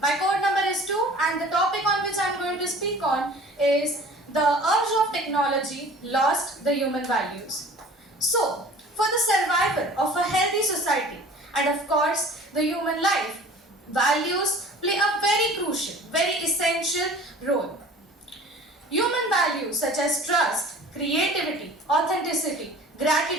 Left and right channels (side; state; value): both; normal; correlation 0.45